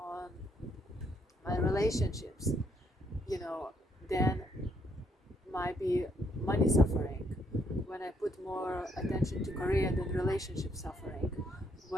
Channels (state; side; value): normal; both; correlation 0.72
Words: my relationships, then might be money suffering. When I put more attention to career, then relationship suffering.